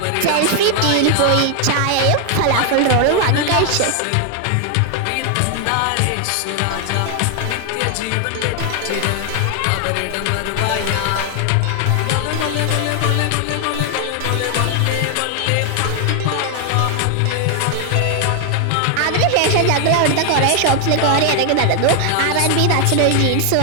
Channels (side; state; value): both; different; correlation 0.00